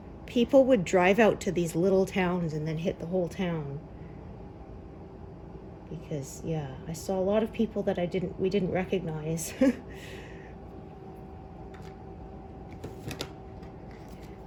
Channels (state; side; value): identical; both; correlation 1.00